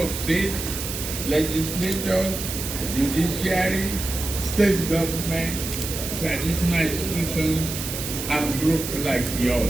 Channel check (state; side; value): noise; right; hiss, 6 dB below the sound